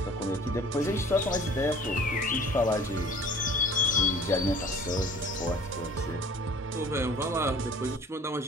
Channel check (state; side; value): normal; both; correlation 0.50